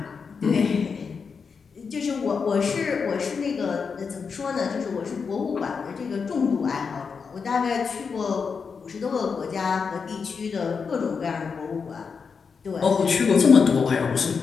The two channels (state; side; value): quieter; right; 5.6 dB